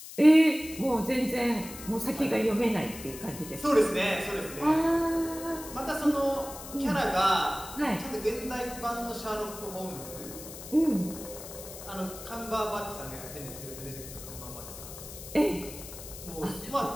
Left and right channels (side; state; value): left; noise; hiss, 13 dB below the sound